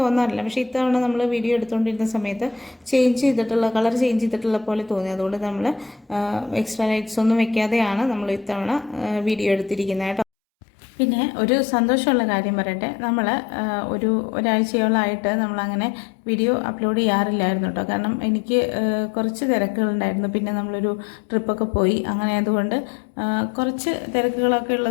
തോന്നാറില്ല, പക്ഷേ ഇത്തവണ നമ്മൾ വീഡിയോ എടുത്തുകൊണ്ടിരുന്ന സമയത്ത് കളർ ചേഞ്ച് ചെയ്തിട്ടുള്ള പോലെ തോന്നി. അതുകൊണ്ട് നമ്മൾ എക്സ്ട്രാ ലൈറ്റ്സ് ഒന്നും വെക്കാതെയാണ് നമ്മൾ ഇത്തവണ വീഡിയോ എടുത്തിരിക്കുന്നത് കേട്ടോ. പിന്നെ ഒരു സന്തോഷമുള്ള കാര്യം പറയട്ടെ, നമ്മൾ ഒരാഴ്ചയോളമായിട്ട് നമ്മളങ്ങനെ വീഡിയോ അപ്ലോഡ് ചെയ്യാറില്ലായിരുന്നു കേട്ടോ. കാരണം എനിക്ക് കുറച്ച് തിരക്കുകളുണ്ടായിരുന്നു. പിന്നെ നമ്മളൊരു ട്രിപ്പൊക്കെ പോയി, അങ്ങനെ ആയതുകൊണ്ട് കുറച്ച് തിരക്കുകളൊക്കെ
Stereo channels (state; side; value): drops out; right; at 10.2 s